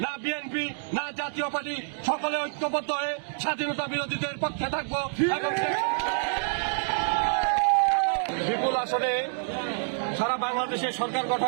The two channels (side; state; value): left; silent; 58 dB below the other